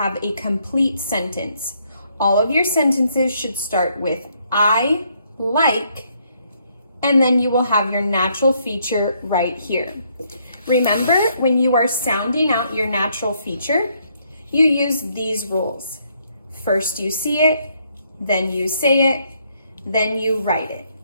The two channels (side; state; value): both; inverted; correlation -0.71